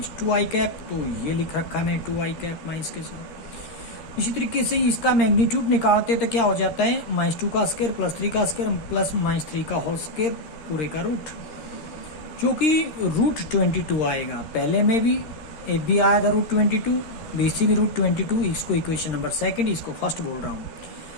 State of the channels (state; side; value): late; right; 13 ms